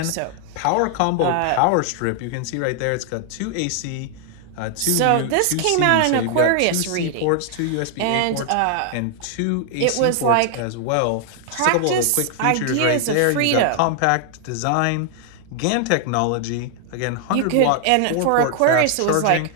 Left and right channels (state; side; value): different; both; correlation 0.00